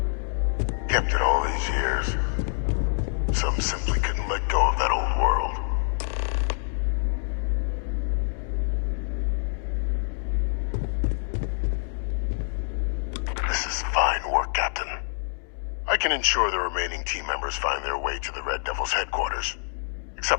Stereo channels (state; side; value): silent; right; 61 dB below the other